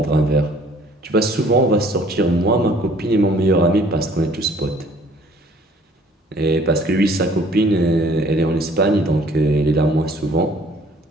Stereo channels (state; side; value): normal; both; correlation 0.57